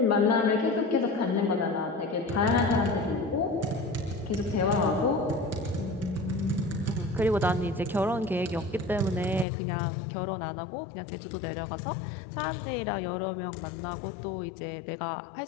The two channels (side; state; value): right; drops out; at 9.5 s